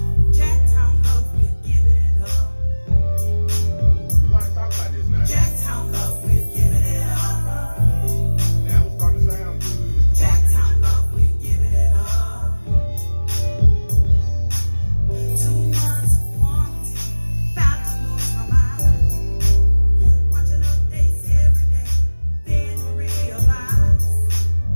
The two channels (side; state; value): both; inverted; correlation -1.00